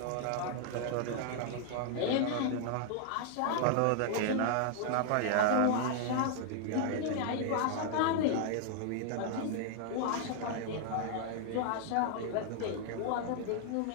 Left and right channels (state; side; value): different; both; correlation 0.00